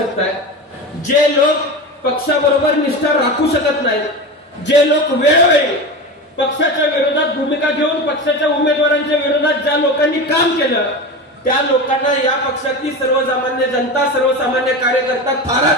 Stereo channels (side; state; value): both; normal; correlation 0.25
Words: आहे. जे लोक पक्षाबरोबर निष्ठा राखू शकत नाहीत, जे लोक वेळोवेळी पक्षाच्या विरोधात भूमिका घेऊन पक्षाच्या उमेदवारांच्या विरोधात ज्या लोकांनी काम केलं, त्या लोकांना या पक्षातली सर्वसामान्य जनता, सर्वसामान्य कार्यकर्ता थारा